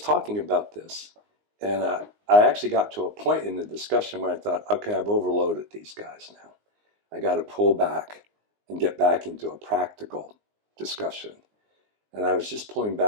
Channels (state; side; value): late; left; 19 ms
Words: talking about this. And I actually got to a point in the discussion where I thought, okay, I've overloaded these guys now. I got to pull back and get back into a practical discussion. And I was just pulling